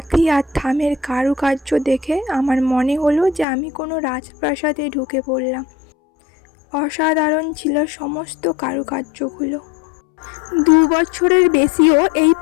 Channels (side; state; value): right; drops out; at 3.5 s